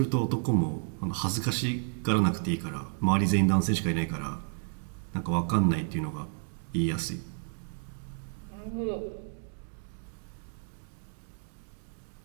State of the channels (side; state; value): left; silent; 57 dB below the other